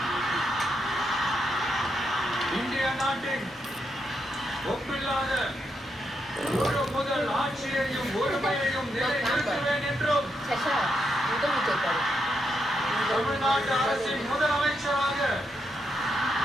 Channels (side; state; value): both; normal; correlation 0.82